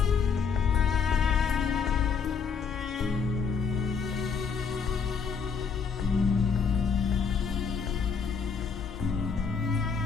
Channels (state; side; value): quieter; right; 5.9 dB